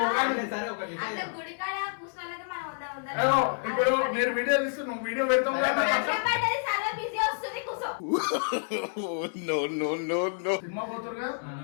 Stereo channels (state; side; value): silent; right; 59 dB below the other